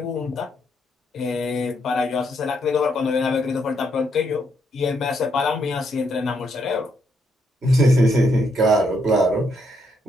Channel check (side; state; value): both; normal; correlation 0.76